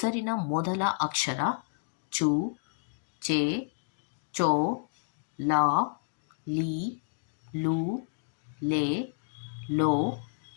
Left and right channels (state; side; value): silent; right; digital silence